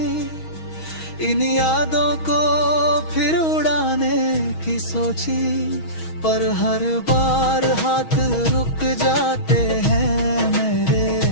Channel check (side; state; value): right; late; 6.3 ms